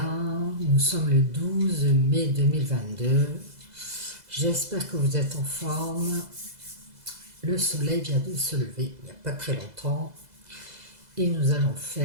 Nous sommes le 12 mai 2022. J'espère que vous êtes en forme. Le soleil vient de se lever il n'y a pas très longtemps. Et nous allons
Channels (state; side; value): late; left; 2.0 ms